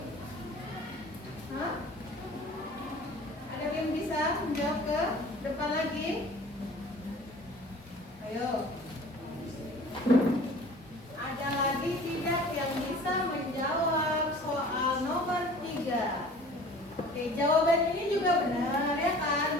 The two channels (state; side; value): normal; both; correlation 0.46